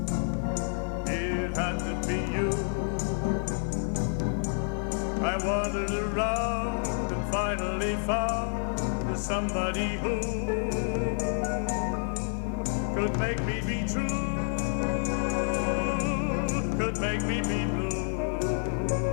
It had to be you. I wandered around and finally found somebody who could make me be true, could make me be blue,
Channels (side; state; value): right; silent; 58 dB below the other